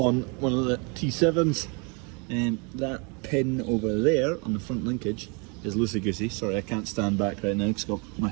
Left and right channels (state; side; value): quieter; left; 33.1 dB